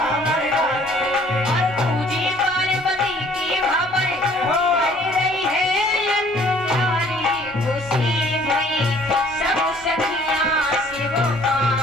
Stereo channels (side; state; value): left; noise; rumble, 27 dB below the sound